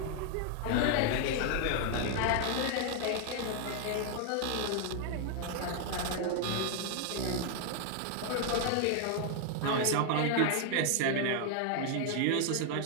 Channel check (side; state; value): both; different; correlation 0.00